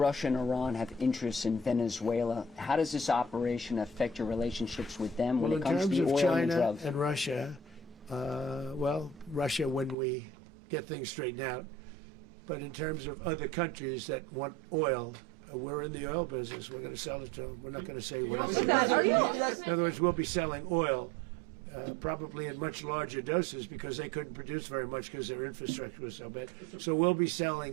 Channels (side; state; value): left; drops out; at 10.0 s